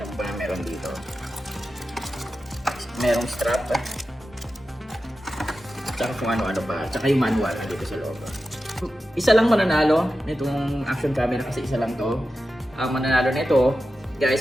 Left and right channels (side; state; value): both; normal; correlation 0.92